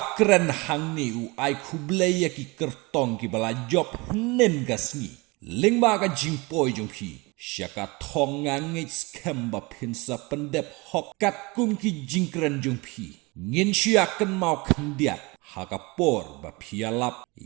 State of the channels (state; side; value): quieter; left; 25.6 dB